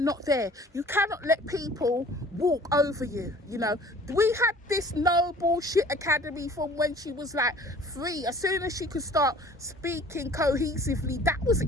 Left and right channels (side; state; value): both; normal; correlation 0.50